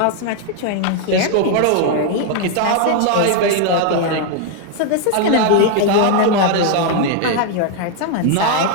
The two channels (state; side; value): different; both; correlation 0.00